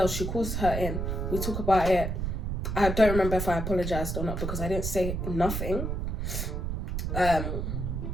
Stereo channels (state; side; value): noise; right; rumble, 2 dB below the sound